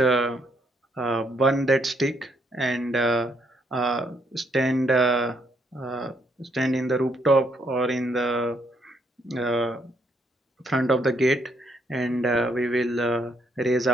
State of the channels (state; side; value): normal; both; correlation 0.73